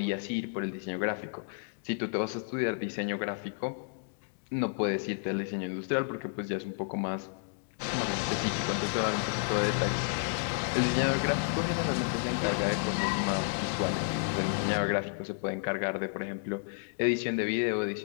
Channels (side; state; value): right; silent; digital silence